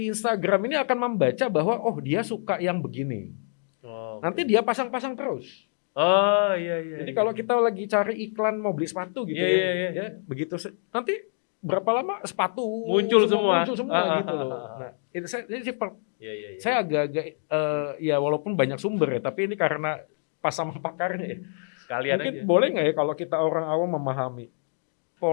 Instagram ini akan membaca bahwa dia suka yang begini. Nanti dia pasang-pasang terus. Oh iya. Jadi kalau kita lagi cari iklan mau beli sepatu gitu ya, begitu nanti berapa lama sepatu muncul semua gitu loh. Nah, itu saya agak-agak ya walaupun banyak sumber ya, tapi ini karena pas sama pakarnya ya. Sekalian mungkin aja. Boleh nggak ya kalau kita orang awam memahami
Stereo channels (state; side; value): silent; right; digital silence